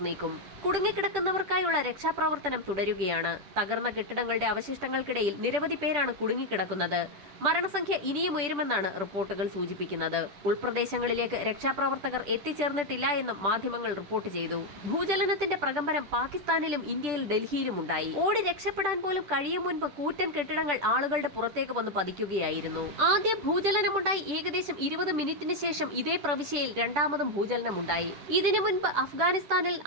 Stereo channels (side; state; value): left; late; 10 ms